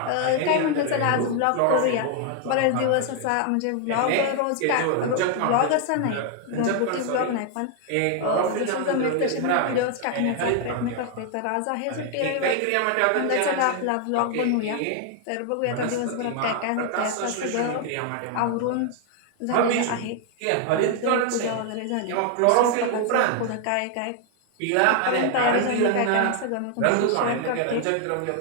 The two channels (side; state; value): both; different; correlation 0.00